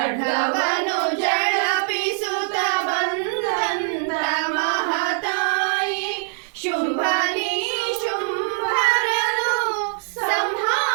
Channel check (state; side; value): silent; left; 64 dB below the other